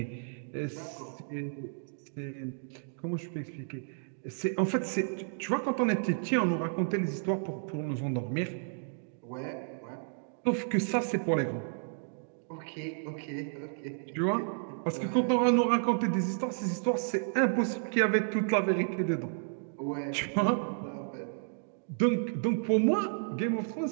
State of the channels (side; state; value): left; silent; digital silence